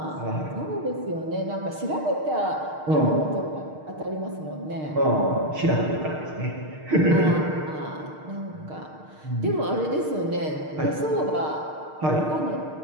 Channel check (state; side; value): late; left; 6.5 ms